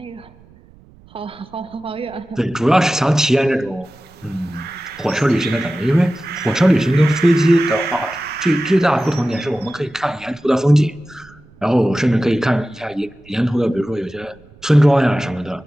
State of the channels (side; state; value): right; noise; rumble, 26 dB below the sound